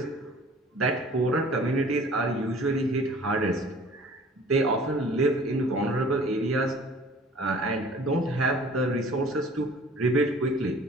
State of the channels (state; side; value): normal; both; correlation 0.49